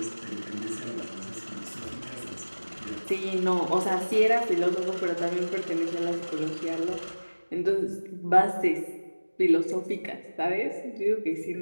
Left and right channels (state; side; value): inverted; both; correlation -1.00